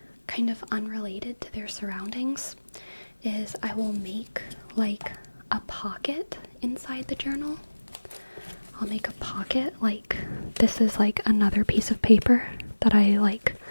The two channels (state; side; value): inverted; both; correlation -1.00